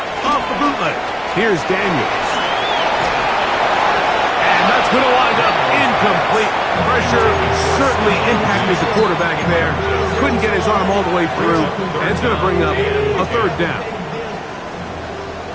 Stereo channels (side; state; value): both; identical; correlation 1.00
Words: Off the bootleg. Here's Daniels. And that's going to wind up incomplete. Pressure certainly impacted the quarterback there. Couldn't get his arm all the way through. And it's going to bring up a third down.